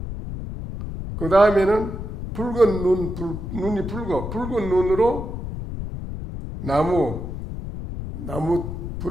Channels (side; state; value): left; noise; rumble, 7 dB below the sound